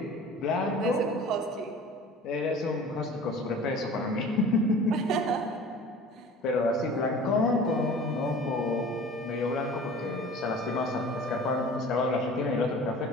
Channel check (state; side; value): normal; both; correlation 0.42